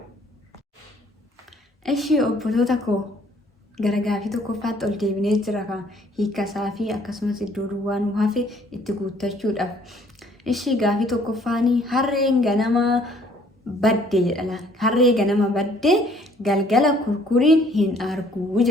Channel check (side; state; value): both; normal; correlation 0.60